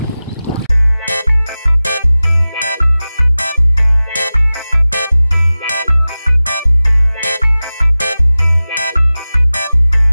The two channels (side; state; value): both; inverted; correlation -0.97